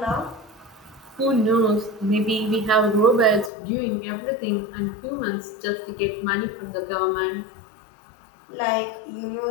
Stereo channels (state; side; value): drops out; right; at 3.5 s